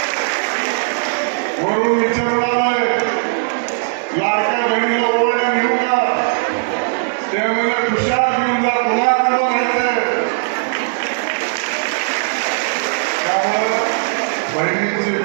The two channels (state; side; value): silent; left; digital silence